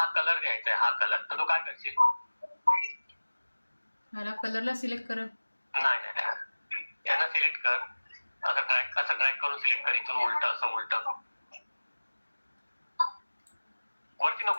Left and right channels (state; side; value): inverted; both; correlation -1.00